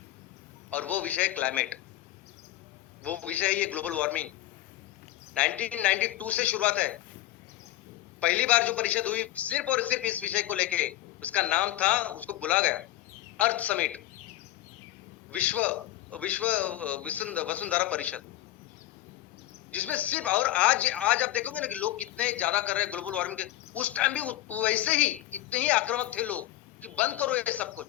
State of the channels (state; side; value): quieter; right; 15.1 dB